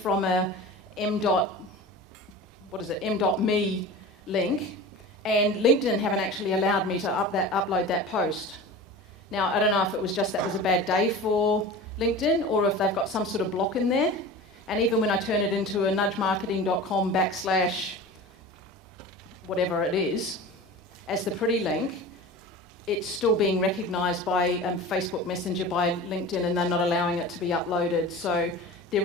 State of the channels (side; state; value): both; normal; correlation 0.34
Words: a m.me link, and LinkedIn haven't actually allowed me to upload that post. Now, I don't know if it was just that was a bad day for LinkedIn, or if they've got some sort of block in there. And even when I turn it into a nudgemarketing.com/ whatever it is, as the pretty link, it's still being recognised by Facebook Messenger, by LinkedIn, and they're not allowing it to be uploaded. So